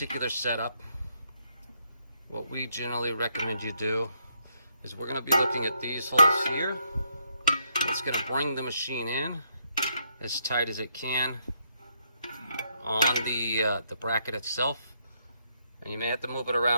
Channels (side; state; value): both; inverted; correlation -0.75